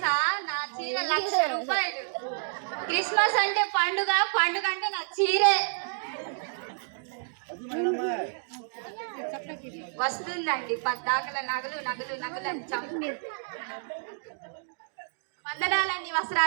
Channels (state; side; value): silent; left; digital silence